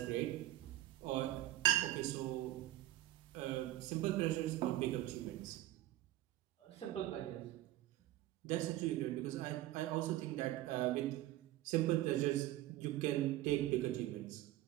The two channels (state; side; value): quieter; left; 15.3 dB